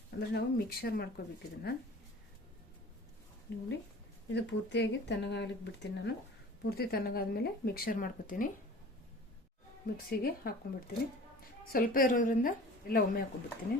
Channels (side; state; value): both; normal; correlation 0.43